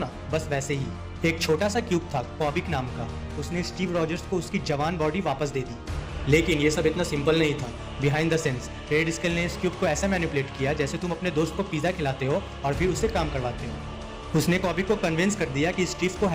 बस वैसे ही एक छोटा सा क्यूब था कॉबिक नाम का। उसने स्टीव रॉजर्स को उसकी जवान बॉडी वापस दे दी। लेकिन ये सब इतना सिंपल नहीं था। Behind the sense red scale ने इस क्यूब को ऐसा मैनिपुलेट किया जैसे तुम अपने दोस्त को पिज़्ज़ा खिलाते हो और फिर उससे काम करवाते हो। उसने कॉबिक को कन्विंस कर दिया कि स्टीव को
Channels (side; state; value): both; identical; correlation 1.00